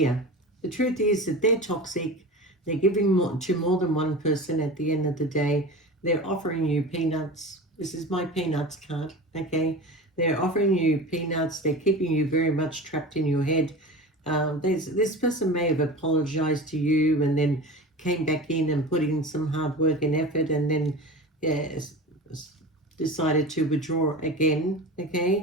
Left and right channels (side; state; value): both; normal; correlation 0.32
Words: The truth is that they're toxic. They're giving more, to more than one person at the end of the day. They're offering you peanuts. This is my peanuts card, okay? They're offering you peanuts. They're keeping you very much trapped in your head. This person may have apologized to you and then came back in and put in some hard work and effort, and then yeah, decided to withdraw again,